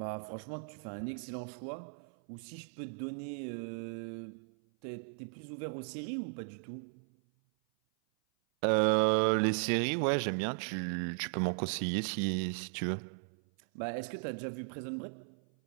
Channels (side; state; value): left; silent; 53 dB below the other